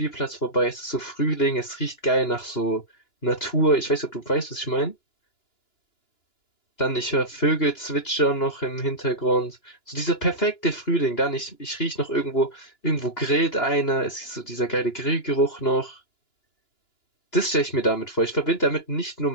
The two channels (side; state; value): right; late; 2.9 ms